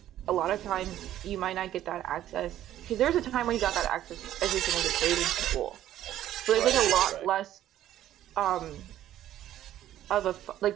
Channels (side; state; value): left; quieter; 12.5 dB